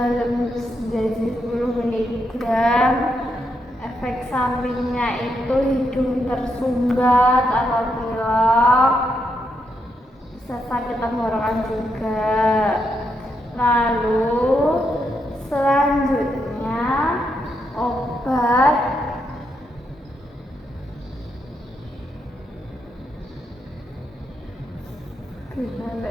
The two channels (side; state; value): both; normal; correlation 0.80